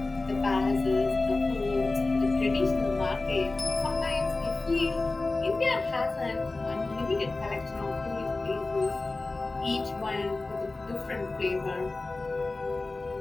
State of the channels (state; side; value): quieter; right; 3.3 dB